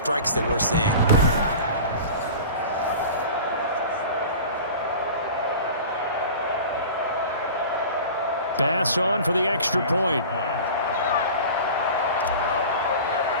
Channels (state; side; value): inverted; both; correlation -0.37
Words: that we're seeing? Pass on for the extra point.